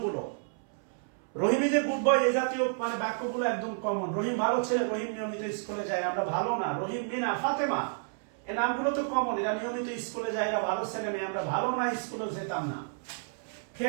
রহিম ইজ এ গুড বয় এই জাতীয় মানে বাক্যগুলো একদম কমন। রহিম ভালো ছেলে, রহিম নিয়মিত স্কুলে যায়। আমরা ভালো না, রহিম, মিনা, ফাতেমা, এই নামগুলো তো কমন, এরা নিয়মিত স্কুলে যায়, এরা ভালো ছেলে মেয়ে। আমরা ভালো না, স্কুলে যেতাম না।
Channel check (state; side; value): silent; left; 57 dB below the other